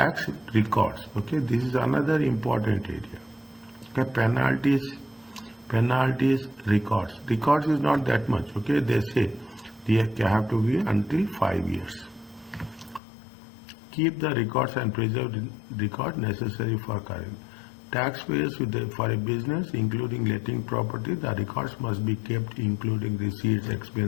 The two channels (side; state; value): right; drops out; at 13.0 s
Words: records. Okay, this is another important area. Okay, penalties, records. Records is not that much. Okay, they say they have to be until 5 years. Keep the records and preserve records necessary for current. Taxpayers for a business, including letting property, the records must be kept, including receipts,